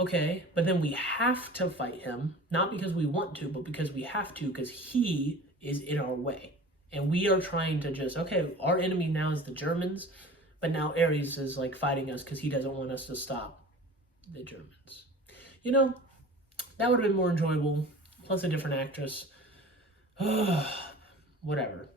but then we have to fight him, not because we want to, but because we have to, because he is in our way. And we are trying to just, okay, our enemy now is the Germans, but now Ares is like fighting us because he doesn't want us to stop the Germans. You know, that would have been more enjoyable, plus a different actress. Whatever.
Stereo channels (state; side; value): normal; both; correlation 0.40